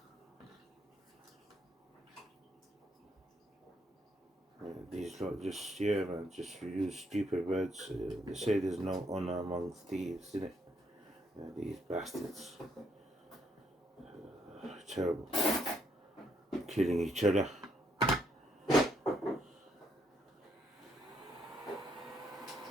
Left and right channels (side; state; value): both; normal; correlation 0.74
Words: These lot just, man, just use stupid words. They say there's no honor among thieves, isn't it? These bastards. Terrible. Killing each other.